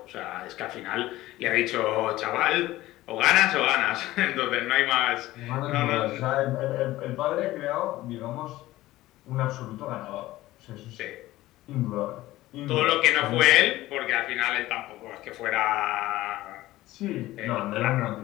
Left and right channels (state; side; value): quieter; right; 16.7 dB